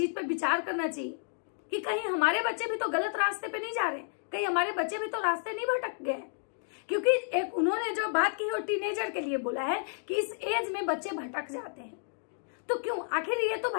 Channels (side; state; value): right; silent; digital silence